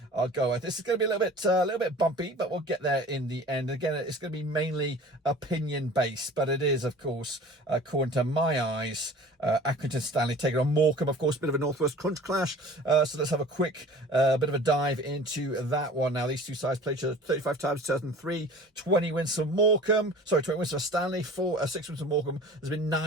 go. This is going to be a little bit bumpy, but we'll get there in the end. Again, it's going to be mainly opinion based, but it is, of course, according to my eyes, Accrington Stanley taking on Morecambe. Of course, a bit of a Northwest crunch clash. So let's have a quick bit of a dive into that one. Now, these two sides played each other 35 times, 2003, 20 wins for Morecambe. Sorry, 20 wins for Stanley, 6 wins for Morecambe. There's been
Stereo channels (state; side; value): normal; both; correlation 0.43